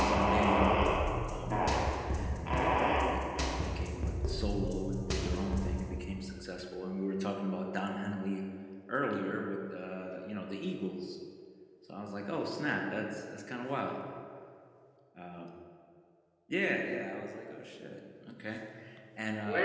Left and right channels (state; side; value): identical; both; correlation 1.00